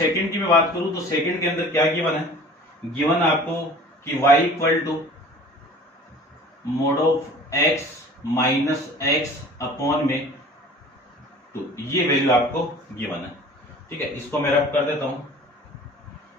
की मैं बात करूं तो 2 के अंदर क्या गिवन है, गिवन आपको कि y = mod(x - x)/2, ये वैल्यू आपको गिवन है। ठीक है, इसको मैं रब कर देता हूं।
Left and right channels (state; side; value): normal; both; correlation 0.45